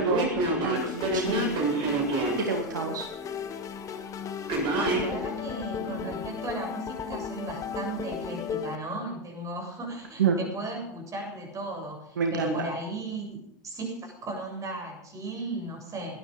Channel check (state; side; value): normal; both; correlation 0.05